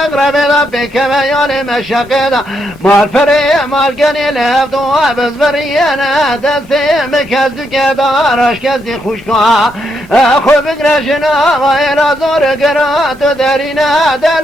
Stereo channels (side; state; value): both; normal; correlation 0.78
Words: دا بکم یال مشقه دا مال فری مال گنی لفت و بزبریانا دستی مکزدو که دارش کزدی خوشکا خوب گرشنا و ایلا زور گرات درینا